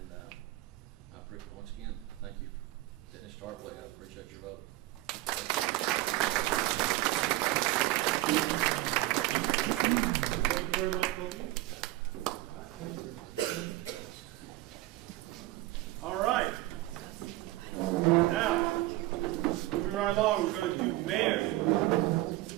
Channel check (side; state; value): left; quieter; 17.6 dB